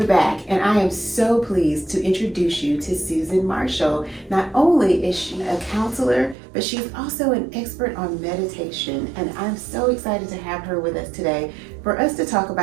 back, and I am so pleased to introduce you to Susan Marshall. Not only is she a counselor, but she's also an expert on meditation, and I'm so excited to have her with us today for us to talk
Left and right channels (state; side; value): drops out; left; at 6.4 s